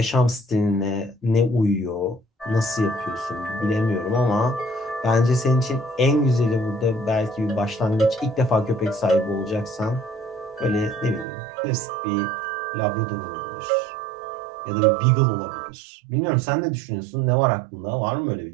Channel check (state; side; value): drops out; left; at 11.2 s